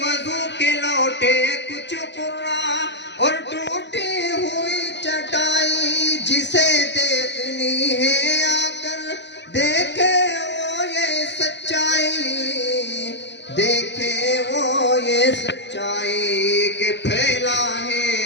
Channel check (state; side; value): late; right; 0.51 ms